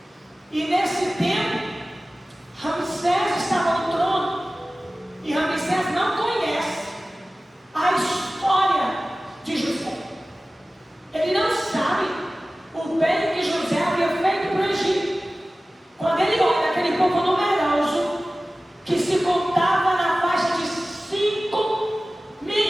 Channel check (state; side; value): normal; both; correlation 0.97